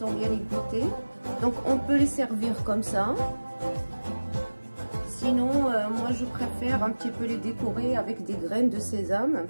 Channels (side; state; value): both; inverted; correlation -1.00